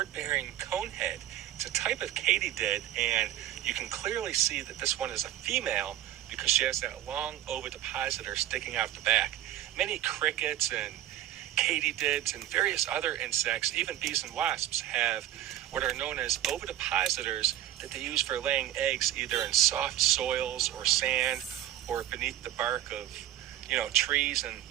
conehead. It's a type of katydid, and you can clearly see that this one is a female because she has that long ovipositor sticking out the back. Many crickets and katydids and various other insects, even bees and wasps, have what are known as ovipositors that they use for laying eggs either in soft soils or sand or beneath the bark of, trees and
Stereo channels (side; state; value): left; quieter; 13.2 dB